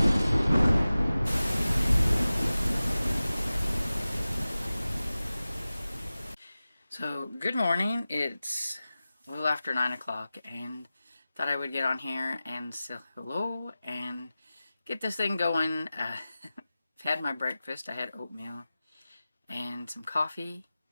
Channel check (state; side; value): inverted; both; correlation -0.96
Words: So, good morning. It's a little after 9 o'clock, and thought I would get on here and say hello and get this thing going. Had my breakfast. I had oatmeal and some coffee,